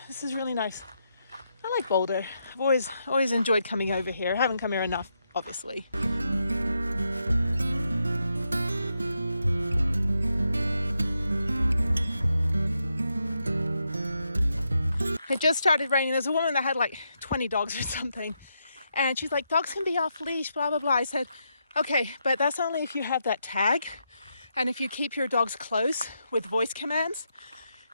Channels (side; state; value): both; inverted; correlation -0.82